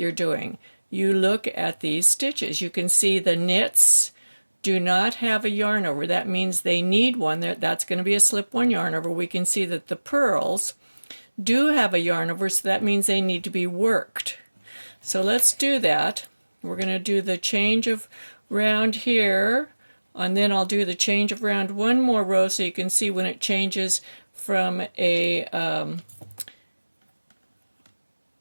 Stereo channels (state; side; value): inverted; both; correlation -1.00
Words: doing? You look at these stitches. You can see the knits do not have a yarn over. That means they need one. That's going to be a slip one yarn over. We can see that the purls do have a yarn over, so that means they need to be worked. So let's do that. We're going to do the change of round here. And then I'll do the change of round one more row so you can see when it changes from a